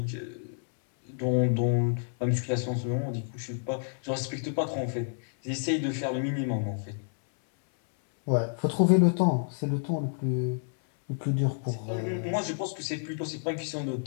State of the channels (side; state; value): right; silent; 58 dB below the other